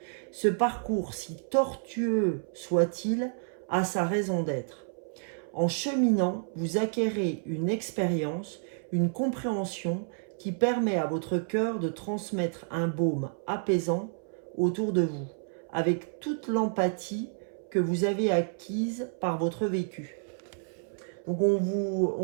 Ce parcours, si tortueux soit-il, a sa raison d'être. En cheminant, vous acquérez une expérience, une compréhension qui permet à votre cœur de transmettre un baume apaisant autour de vous, avec toute l'empathie que vous avez acquise par votre vécu. Donc on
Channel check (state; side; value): silent; left; 58 dB below the other